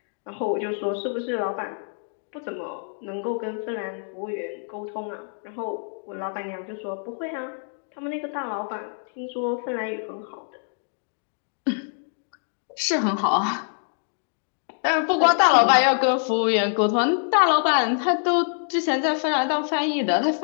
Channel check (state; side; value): silent; right; 61 dB below the other